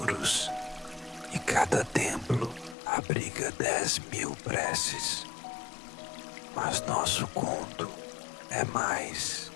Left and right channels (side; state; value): right; drops out; at 2.8 s